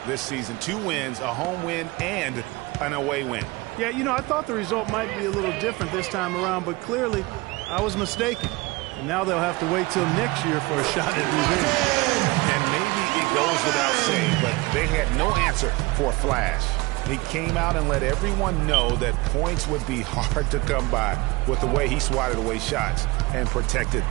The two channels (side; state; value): left; quieter; 22.5 dB